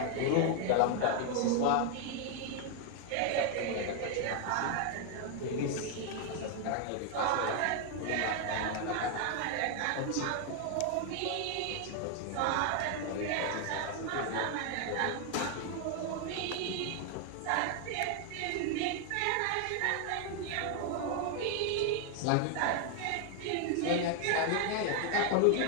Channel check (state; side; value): different; both; correlation 0.00